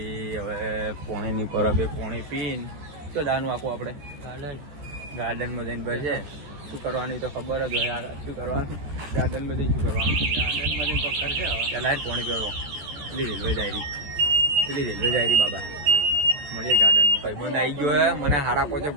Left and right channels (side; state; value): left; late; 14 ms